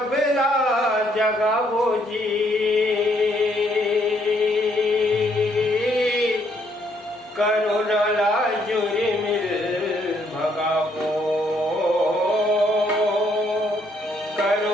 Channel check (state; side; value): normal; both; correlation 0.70